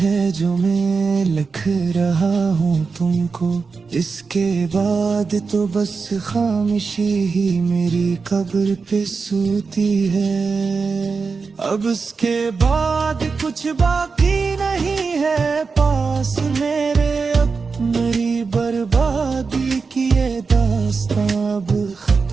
जो मैं लिख रहा हूँ तुमको, इसके बाद तो बस खामोशी ही मेरी कब्र पे सोती है। अब उसके बाद कुछ बाकी नहीं है पास मेरे, अब मेरी बर्बादी की ये दास्तां अब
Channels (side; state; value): left; quieter; 4.8 dB